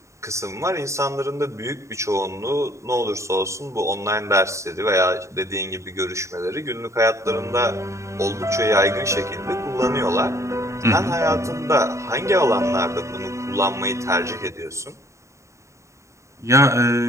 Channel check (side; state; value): left; late; 0.14 ms